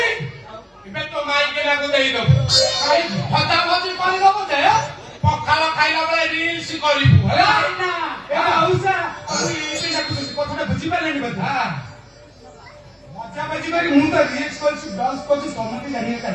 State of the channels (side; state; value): both; identical; correlation 1.00